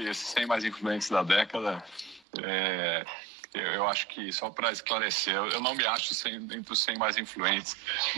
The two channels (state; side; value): drops out; left; at 2.2 s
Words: 100 mais influentes da década. Eu acho que, só para esclarecer, eu não me acho entre os 100 mais influentes,